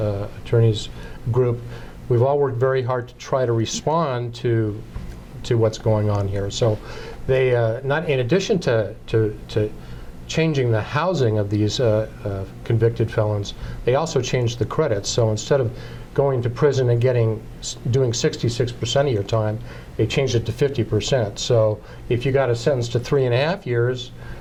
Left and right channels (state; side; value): identical; both; correlation 1.00